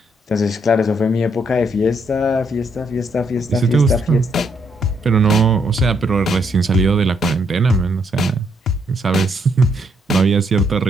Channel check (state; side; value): normal; both; correlation 0.74